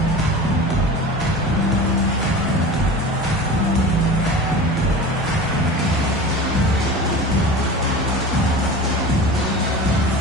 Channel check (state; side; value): normal; both; correlation 0.34